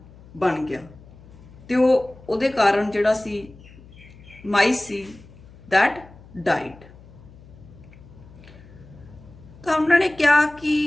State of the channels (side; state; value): left; noise; hum, 22 dB below the sound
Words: ਬਣ ਗਿਆ ਤੇ ਉਹਦੇ ਕਾਰਨ ਜਿਹੜਾ ਸੀ ਮਾਈਸ ਸੀ ਦੈਟ ਡਾਈਡ। ਤਾਂ ਉਹਨਾਂ ਨੇ ਕਿਹਾ